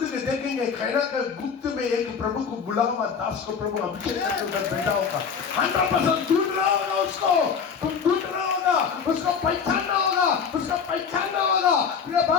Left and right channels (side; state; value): right; quieter; 6.4 dB